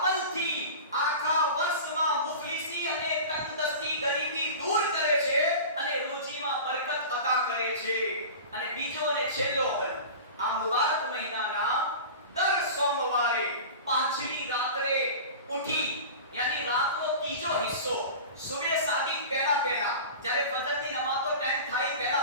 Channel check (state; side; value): inverted; both; correlation -0.34